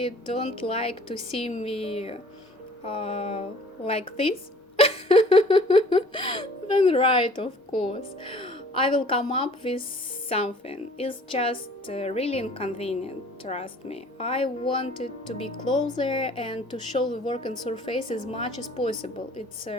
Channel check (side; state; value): both; normal; correlation 0.52